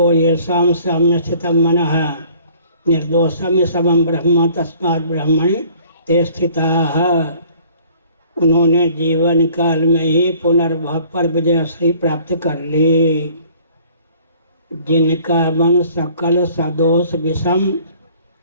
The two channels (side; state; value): both; inverted; correlation -0.54